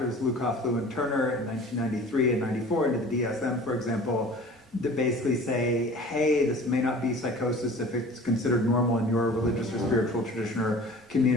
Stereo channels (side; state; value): both; normal; correlation 0.44